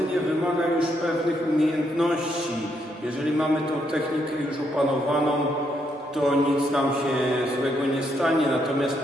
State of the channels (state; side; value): normal; both; correlation 0.76